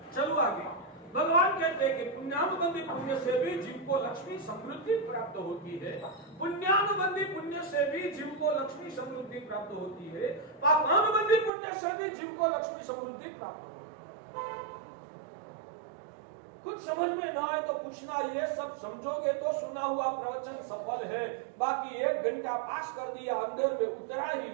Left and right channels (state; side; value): drops out; left; at 11.5 s